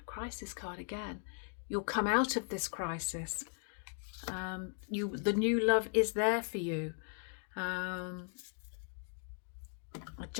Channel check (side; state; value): right; silent; 53 dB below the other